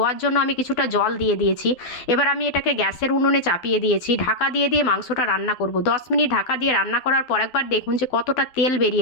জন্য আমি কিছুটা জল দিয়ে দিয়েছি। এবার আমি এটাকে গ্যাসের উনুনে চাপিয়ে দিয়েছি, ঢাকা দিয়ে মাংসটা রান্না করব। 10 মিনিট ঢাকা দিয়ে রান্না করার পর একবার দেখুন যে কতটা তেল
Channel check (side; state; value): right; late; 12 ms